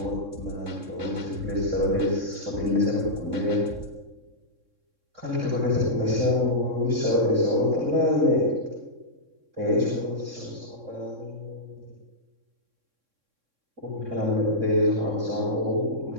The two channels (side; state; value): left; late; 3.6 ms